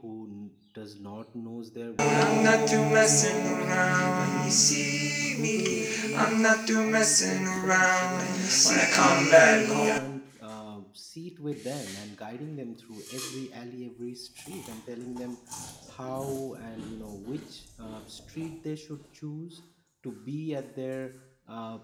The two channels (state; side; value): identical; both; correlation 1.00